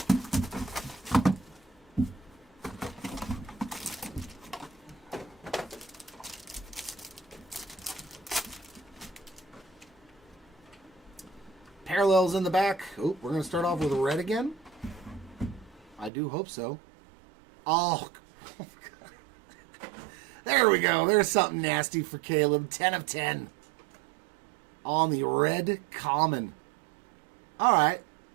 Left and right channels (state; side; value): drops out; left; at 16.1 s